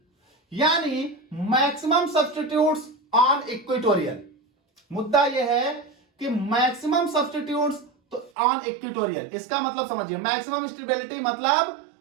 यानी मैक्सिमम सब्स्टिट्यूट्स ऑन इक्वेटोरियल। मुद्दा यह है कि मैक्सिमम सब्स्टिट्यूट्स तो ऑन इक्वेटोरियल, इसका मतलब समझिए मैक्सिमम स्टेबिलिटी मतलब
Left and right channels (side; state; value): left; drops out; at 8.3 s